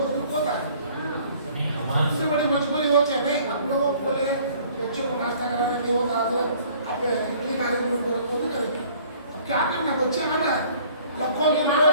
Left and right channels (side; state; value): both; inverted; correlation -0.55